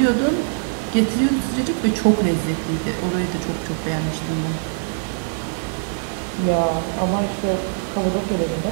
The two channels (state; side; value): silent; left; digital silence